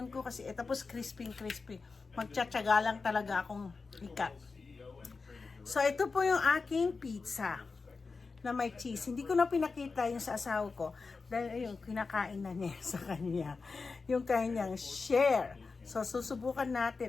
ko kasi, tapos crispy. Magtsatsaga lang talaga akong ikat. So, ito po yung aking pizza na may cheese. Hindi ko na pinakita yung sa asawa ko dahil yung kinakain na niya sa kanya. Yung kanyang share. So, susubukan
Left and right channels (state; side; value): quieter; right; 4.4 dB